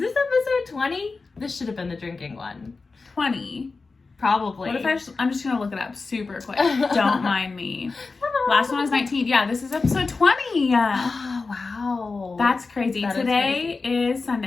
episode 20? This should have been the drinking one. 20. Probably. What if I'm just going to look it up super quick. Don't mind me. Last one was 19. Yeah, this is episode 20. Oh, wow. That's crazy. That Today is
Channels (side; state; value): right; quieter; 4.1 dB